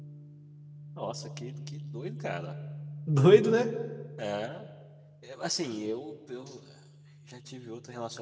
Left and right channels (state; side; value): identical; both; correlation 1.00